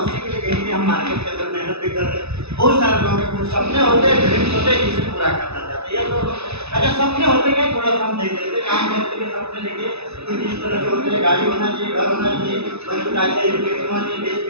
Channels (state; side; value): late; left; 0.80 ms